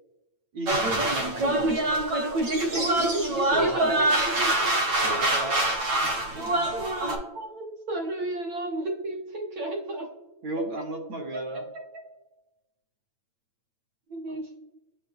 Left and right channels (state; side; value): late; left; 8.9 ms